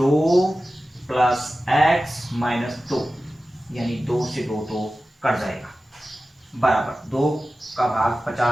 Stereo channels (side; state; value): both; normal; correlation 0.95